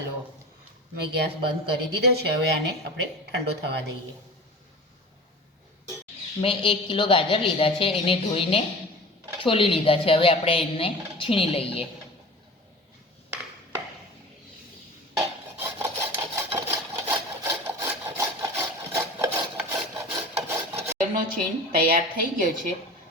મેં ગેસ બંધ કરી દીધો છે। હવે આને આપણે ઠંડો થવા દઈએ। મેં 1 કિલો ગાજર લીધા છે, એને ધોઈને છોલી લીધા છે। હવે આપણે એને છીણી લઈએ। ગાજરનો છીણ તૈયાર થઈ ગયો છે।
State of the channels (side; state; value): both; normal; correlation 0.37